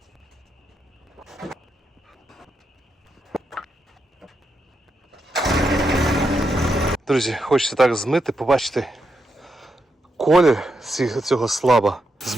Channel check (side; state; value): both; normal; correlation 0.83